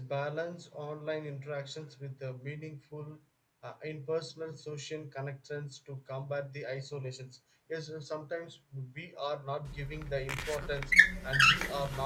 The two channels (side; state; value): both; identical; correlation 1.00